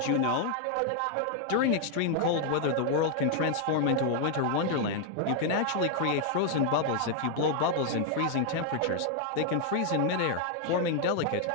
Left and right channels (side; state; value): both; different; correlation 0.00